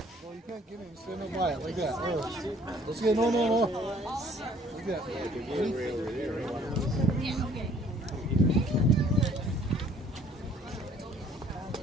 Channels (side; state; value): both; normal; correlation 0.58